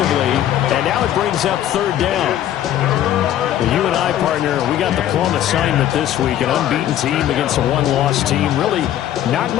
And now it brings up 3rd down. Well, you and I, partner, we got the plum assignment this week. An unbeaten team against a one-loss team. Really not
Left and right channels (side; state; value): right; quieter; 11.7 dB